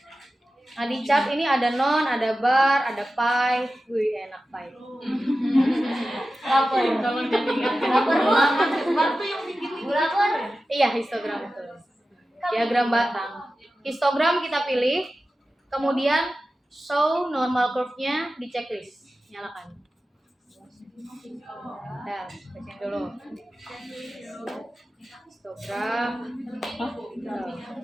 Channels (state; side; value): normal; both; correlation 0.94